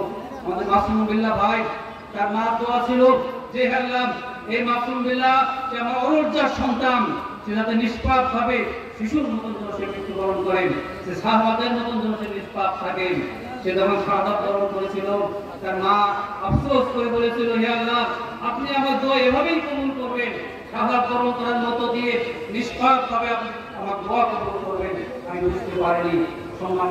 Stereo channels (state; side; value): identical; both; correlation 1.00